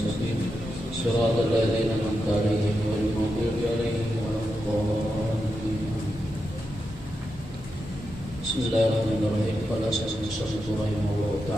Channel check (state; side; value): normal; both; correlation 0.87